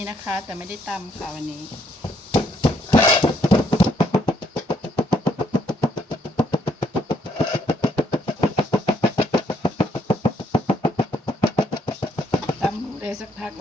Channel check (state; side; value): normal; both; correlation 0.71